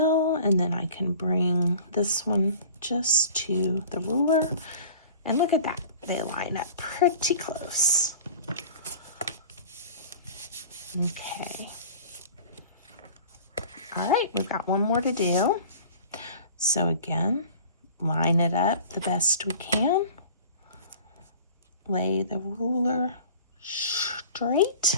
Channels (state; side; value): inverted; both; correlation -0.43